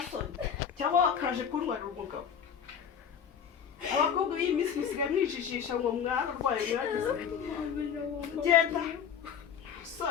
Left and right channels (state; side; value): quieter; right; 7.7 dB